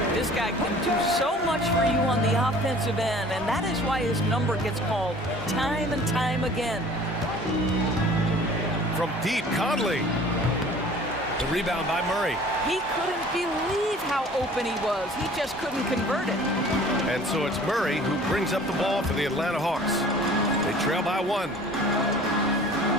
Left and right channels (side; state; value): both; normal; correlation 0.48